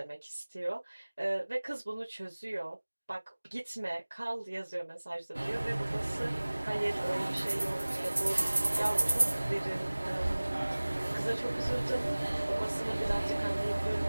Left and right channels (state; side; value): inverted; both; correlation -1.00